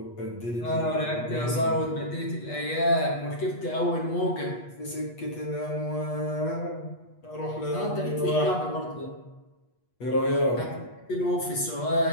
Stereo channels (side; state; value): right; late; 8.3 ms